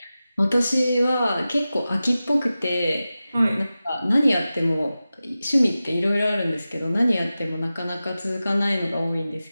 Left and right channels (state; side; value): inverted; both; correlation -0.95